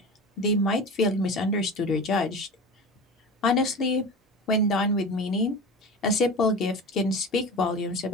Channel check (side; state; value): both; normal; correlation 0.31